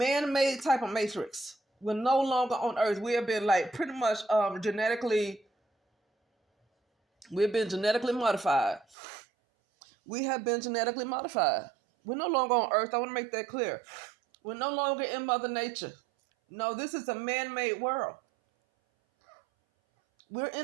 type of matrix. We're no longer on earth. We have been pretty much we've been genetically modified. We have been genetically modified. We're no longer on earth. I want to make that clear. We're no longer in Mother Nature. No, this is a man-made world. We're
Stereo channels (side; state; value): left; drops out; at 9.0 s